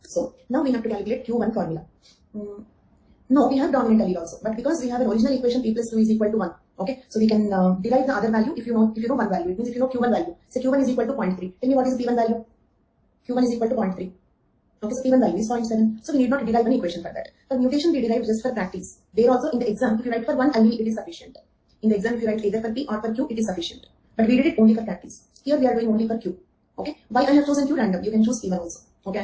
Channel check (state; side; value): identical; both; correlation 1.00